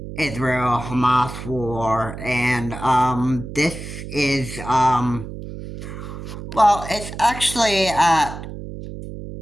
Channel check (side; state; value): right; noise; hum, 10 dB below the sound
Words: Israel Hamas war, and this is well, it's actually